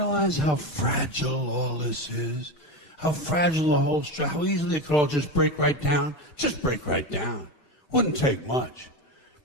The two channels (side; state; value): right; late; 6.3 ms